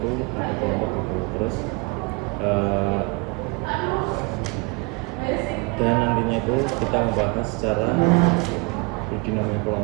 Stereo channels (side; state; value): left; quieter; 28.6 dB